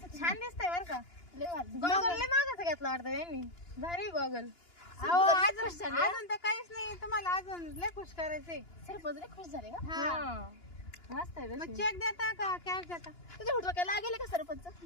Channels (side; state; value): right; late; 2.9 ms